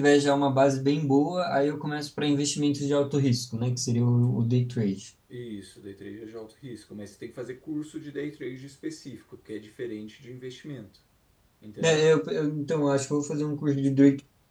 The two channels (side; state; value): both; identical; correlation 1.00